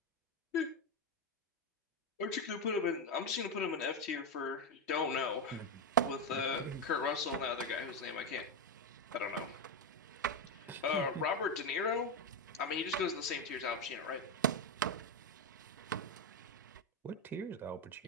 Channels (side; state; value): both; normal; correlation 0.08